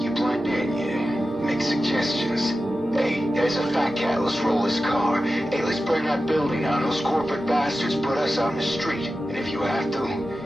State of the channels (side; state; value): both; normal; correlation 0.93